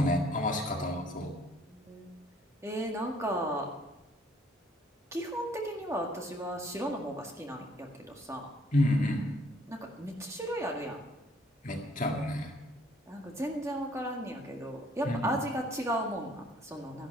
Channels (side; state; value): both; normal; correlation 0.61